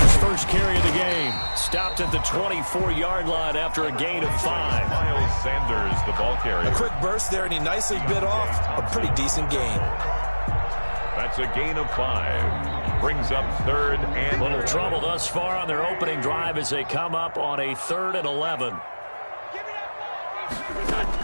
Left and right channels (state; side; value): inverted; both; correlation -1.00